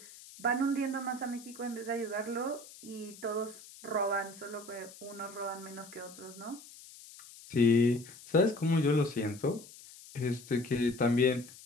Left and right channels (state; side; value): noise; left; hiss, 18 dB below the sound